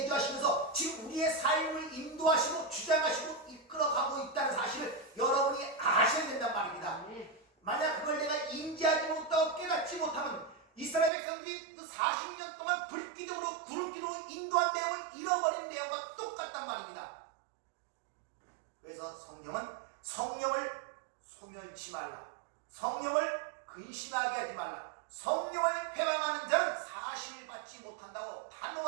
지금 우리의 삶을 인도하시고 주장하시고 이끌어가고 있다는 사실을 여러분이 아셔야 된단 말입니다. 잃지 말라. 성령을 근심하게 하지 말라. 성령을 회방하는 자는 사심을 받지 못한다고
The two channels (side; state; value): left; drops out; at 11.1 s